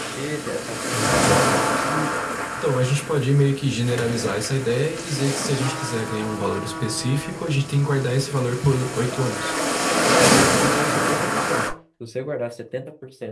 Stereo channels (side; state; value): both; identical; correlation 1.00